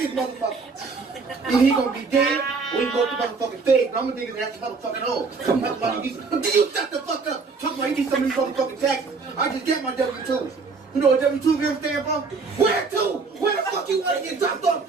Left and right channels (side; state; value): left; quieter; 4.5 dB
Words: motherfucker. Either he gonna be dead, or he go to motherfucking feds, but I'm gonna dig his ass a motherfucking hole. Talking about he needs, but you shut the fuck up. Talking about he needs some of these motherfucking taxes. I just got my W-2s. You know what W-2s ever stand for? Where to? Where the fuck you wanna get dropped off